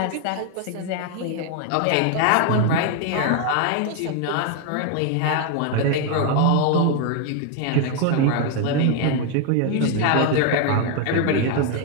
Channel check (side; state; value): both; different; correlation 0.01